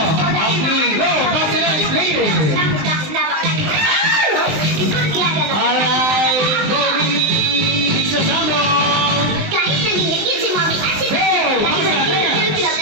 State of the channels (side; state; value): left; late; 20 ms